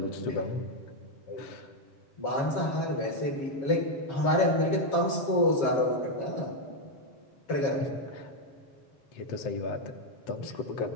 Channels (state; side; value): late; right; 7.3 ms